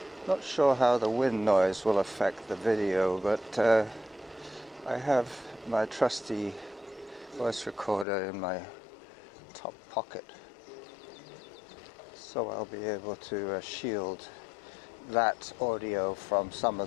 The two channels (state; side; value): drops out; right; at 8.1 s